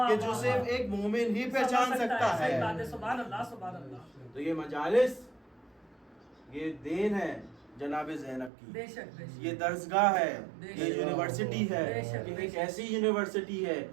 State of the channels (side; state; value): left; drops out; at 8.5 s